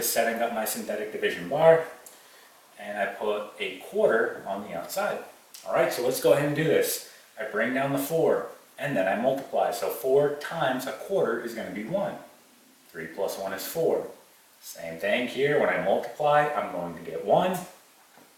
setting up my synthetic division bar, and I put a quarter on the outside. All right, so let's go ahead and do this. I bring down the 4, and then I multiply. So 4 times a quarter is going to be 1. 3 plus 1 is 4. Same thing here. When I multiply, I'm going to get 1.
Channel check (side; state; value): both; identical; correlation 1.00